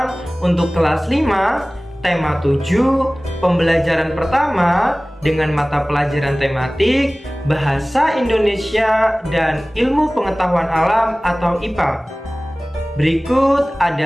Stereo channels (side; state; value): both; normal; correlation 0.98